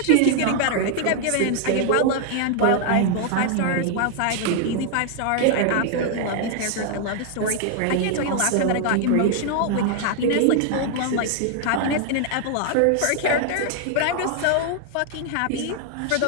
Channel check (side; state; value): both; different; correlation 0.00